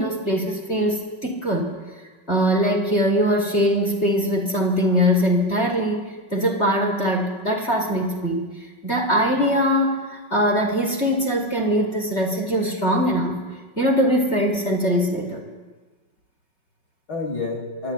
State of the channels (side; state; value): right; late; 5.3 ms